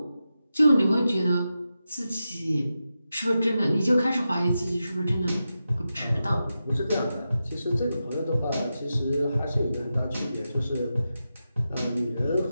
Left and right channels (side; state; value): both; inverted; correlation -0.90